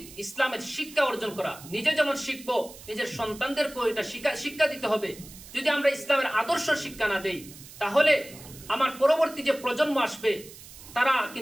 ইসলামের শিক্ষা অর্জন করা। নিজে যেমন শিখবো, নিজের সন্তানদেরকেও এটা শিক্ষা দিতে হবে। যদি আমরা ইসলামের আদর্শ শিক্ষা না দেই, তাহলে আমার পরবর্তী যে প্রজন্ম আসবে, তারা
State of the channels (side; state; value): right; noise; hiss, 17 dB below the sound